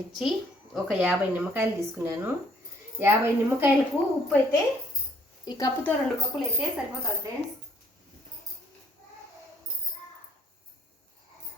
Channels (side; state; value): both; normal; correlation 0.65